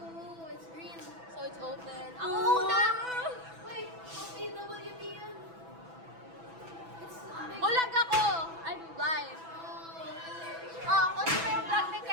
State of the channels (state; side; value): late; left; 6.0 ms